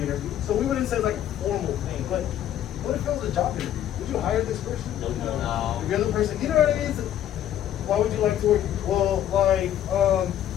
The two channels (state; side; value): quieter; right; 11.2 dB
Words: interview. So we wouldn't say like a formal thing, but what if it was a job interview? Would you hire this person? No. If you're the person, you know what I mean? Why would you like to work? Well,